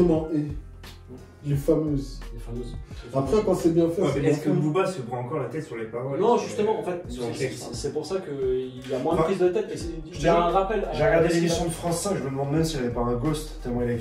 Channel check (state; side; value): identical; both; correlation 1.00